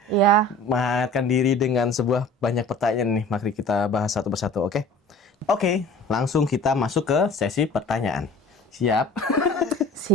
Iya. Menghangatkan diri dengan sebuah banyak pertanyaan nih. Mari kita bahas satu persatu, oke? Oke, langsung kita masuk ke sesi pertanyaan. Siap?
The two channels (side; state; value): both; normal; correlation 0.45